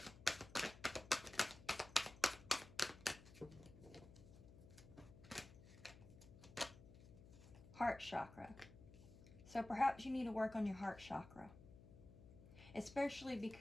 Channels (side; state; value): left; noise; hum, 18 dB below the sound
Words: Heart chakra. So perhaps you need to work on your heart chakra. Especially